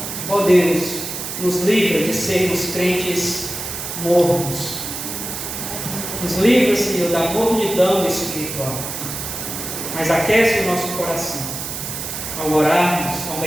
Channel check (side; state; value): right; noise; hiss, 6 dB below the sound